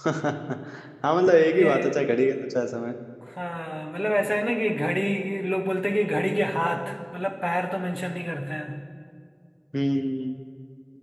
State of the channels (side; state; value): both; identical; correlation 1.00